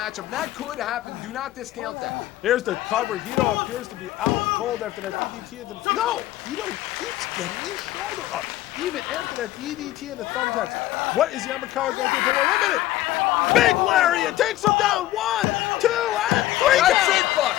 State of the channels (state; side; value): quieter; right; 15.2 dB